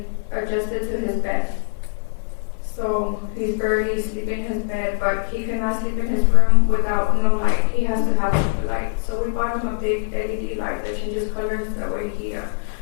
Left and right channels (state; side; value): silent; right; 56 dB below the other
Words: adjusted to his bed. So he's barely sleeping in his bed, but he cannot sleep in his room without no light. He has to have a light. So we bought him a big LED light that changes colors. That way he